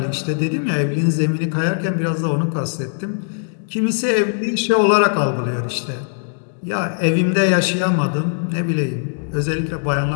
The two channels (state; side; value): silent; right; digital silence